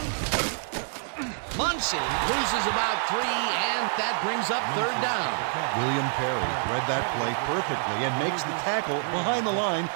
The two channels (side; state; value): left; silent; 57 dB below the other